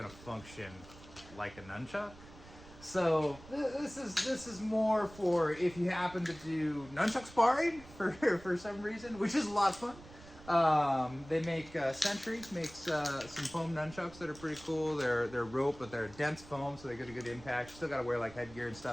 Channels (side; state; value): right; noise; rumble, 19 dB below the sound